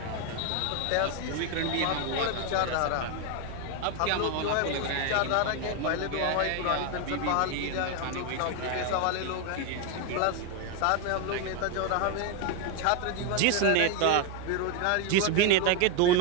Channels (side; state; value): both; different; correlation 0.01